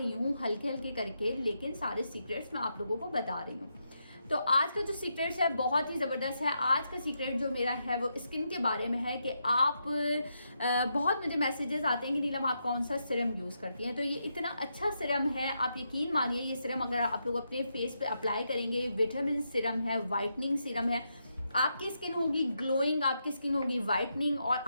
हूँ हल्के हल्के करके, लेकिन सारे सीक्रेट्स मैं आप लोगों को बता रही हूँ। तो आज का जो सीक्रेट्स है बहुत ही ज़बरदस्त है। आज का सीक्रेट जो मेरा है वो स्किन के बारे में है कि आप बहुत मुझे मैसेजेस आते हैं कि नीलम आप कौन सा सिरम यूज़ करती हैं। तो ये इतना अच्छा सिरम है, आप यकीन मानिए ये सिरम अगर आप लोग अपने फेस पे अप्लाई करेंगे, विटामिन सिरम है, वाइटनिंग सिरम है, आपकी स्किन होगी ग्लोइंग, आपकी स्किन होगी वाइटनिंग, और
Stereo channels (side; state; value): both; inverted; correlation -0.83